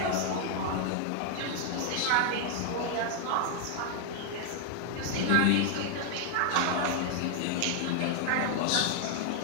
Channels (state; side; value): different; both; correlation 0.00